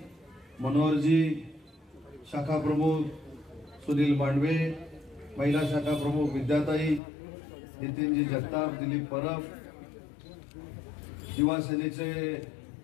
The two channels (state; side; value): drops out; right; at 7.0 s